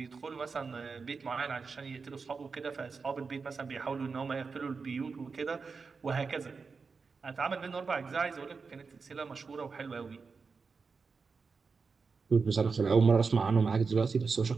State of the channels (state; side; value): quieter; left; 4.9 dB